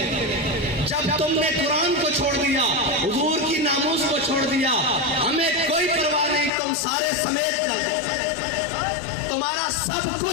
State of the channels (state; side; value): drops out; right; at 6.5 s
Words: جب تم نے قرآن کو چھوڑ دیا، حضور کی ناموس کو چھوڑ دیا، ہمیں کوئی پرواہ نہیں، تم سارے سمیت چل جائے، تمہارا سب